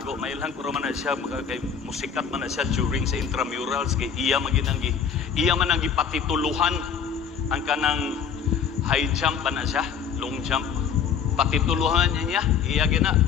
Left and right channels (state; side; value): quieter; right; 7.2 dB